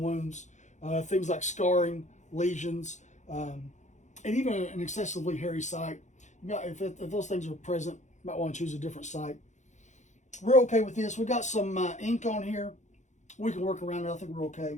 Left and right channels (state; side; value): late; right; 0.35 ms